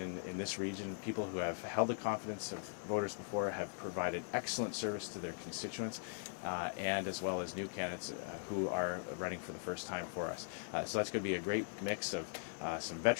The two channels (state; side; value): silent; right; digital silence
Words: this region, people who have held the confidence of voters before, have provided excellent service to their constituents, and as well as new candidates who are running for the first time for us. So that's going to be a great mix of some